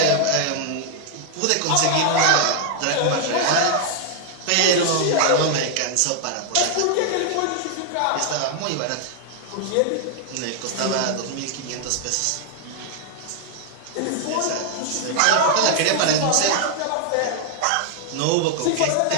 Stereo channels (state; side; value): different; both; correlation 0.00